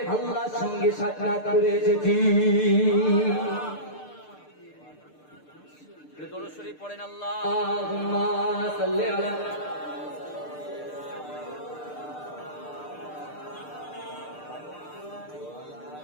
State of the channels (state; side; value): late; right; 6.7 ms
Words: আল্লাহর সঙ্গে সাক্ষাৎ করে এসেছি। দরুদ শরীফ পড়েন, আল্লাহুম্মা সাল্লি আলা